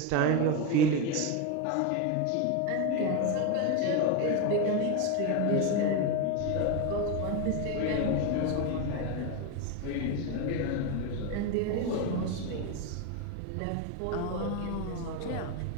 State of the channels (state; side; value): different; both; correlation 0.03